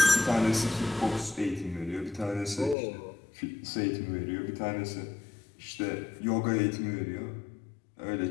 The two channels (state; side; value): drops out; right; at 2.8 s